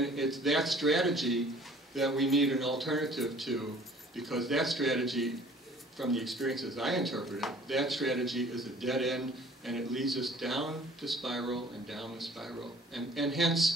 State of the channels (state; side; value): normal; both; correlation 0.52